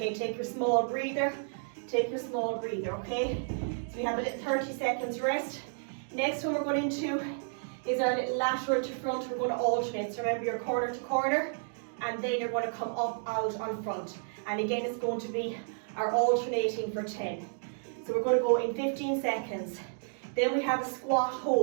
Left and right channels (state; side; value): silent; left; digital silence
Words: take your small breather. Take your small breather, okay? So we have a little 30 seconds rest. Next one we're going into is our little lateral to front. We're going to alternate. So remember, you're corner to corner, and then you're going to come up, out, on front. And again, it's going to be our alternating for 10. So we're going to go in 15 seconds. Then we have a squat